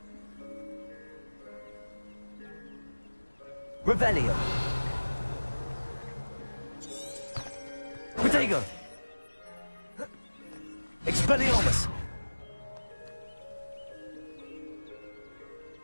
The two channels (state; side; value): inverted; both; correlation -1.00